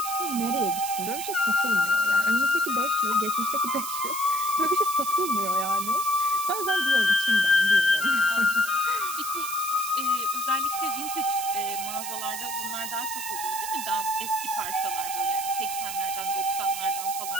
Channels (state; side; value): noise; right; hiss, 7 dB below the sound